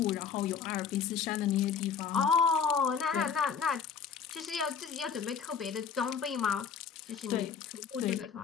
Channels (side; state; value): right; quieter; 6.7 dB